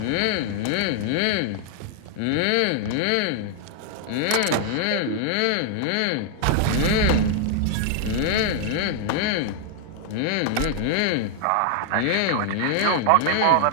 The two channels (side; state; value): both; different; correlation 0.00